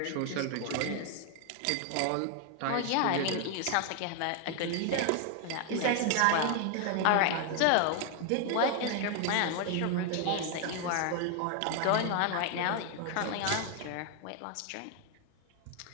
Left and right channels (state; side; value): different; both; correlation 0.00